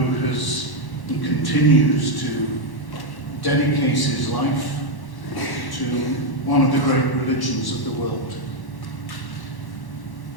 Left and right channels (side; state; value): right; late; 1.1 ms